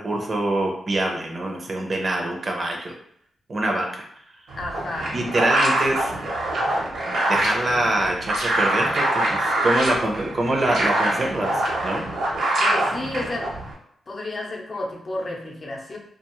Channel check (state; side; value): normal; both; correlation 0.84